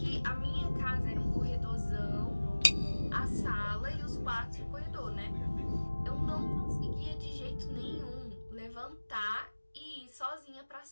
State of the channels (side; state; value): both; inverted; correlation -1.00